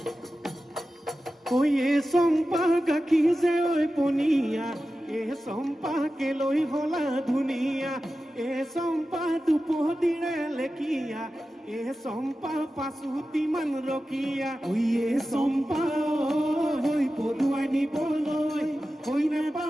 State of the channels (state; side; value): normal; both; correlation 0.93